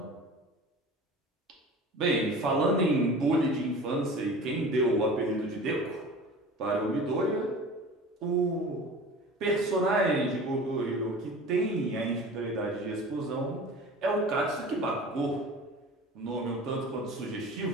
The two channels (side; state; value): both; normal; correlation 0.39